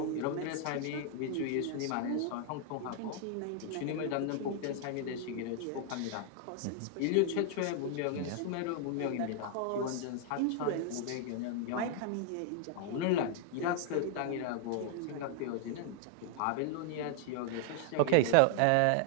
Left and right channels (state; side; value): different; both; correlation 0.00